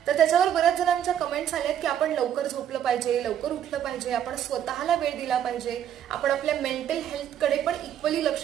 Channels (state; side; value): quieter; left; 10.0 dB